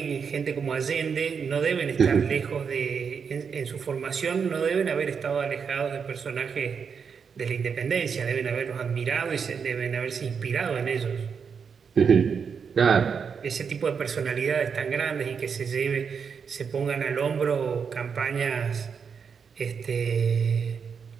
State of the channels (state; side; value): quieter; left; 6.3 dB